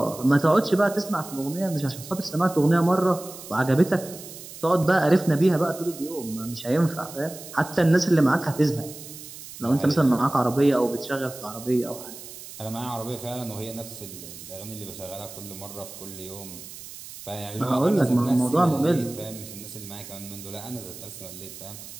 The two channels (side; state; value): right; noise; hiss, 14 dB below the sound